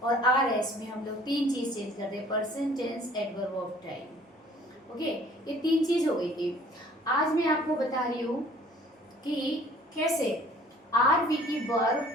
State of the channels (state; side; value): normal; both; correlation 0.54